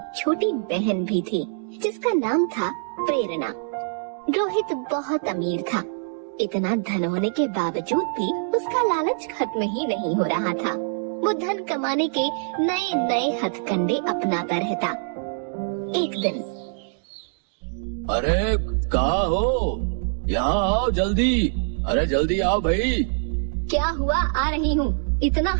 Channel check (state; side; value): silent; left; digital silence